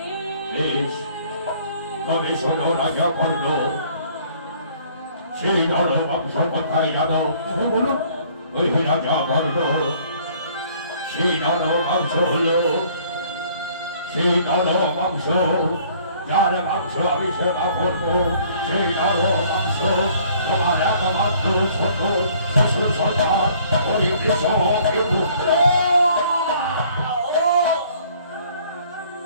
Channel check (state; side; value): inverted; both; correlation -0.58